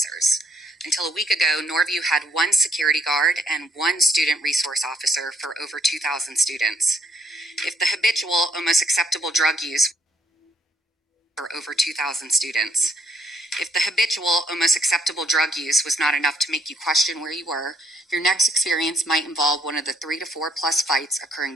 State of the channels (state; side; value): normal; both; correlation 0.67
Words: Until a week ago, Norview had one security guard and one student resource officer for over 2,000 students. If the habitual, almost acceptable drug use for over 2,000 students. If the habitual, almost acceptable drug use was not enough to make you question where you were, your next experience might involve one of the 3 to 4 plus fights occurring